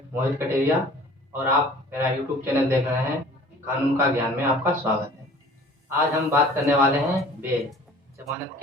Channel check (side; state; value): both; normal; correlation 0.48